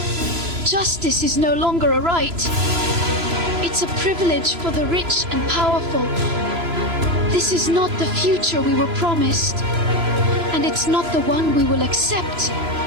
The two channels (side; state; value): left; late; 3.0 ms